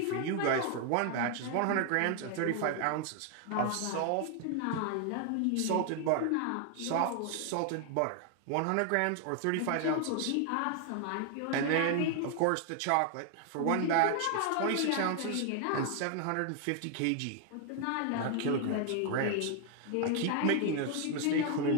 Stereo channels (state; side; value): different; both; correlation 0.00